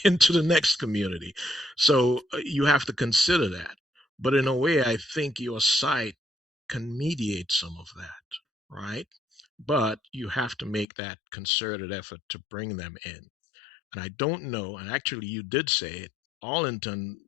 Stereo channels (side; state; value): right; drops out; at 10.9 s